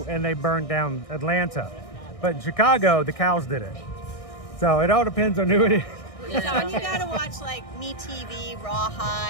and they burned down Atlanta, but in Chicago the cows did it. So it all depends on who it is. So when you gotta watch like Me TV,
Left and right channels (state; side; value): late; right; 1.6 ms